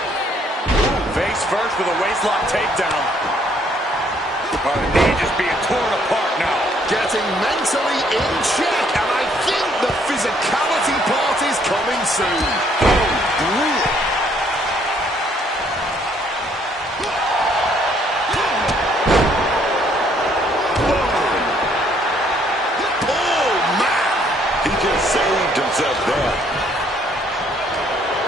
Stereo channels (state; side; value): normal; both; correlation 0.66